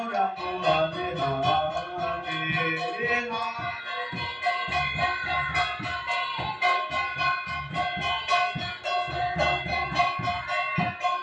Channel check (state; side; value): identical; both; correlation 1.00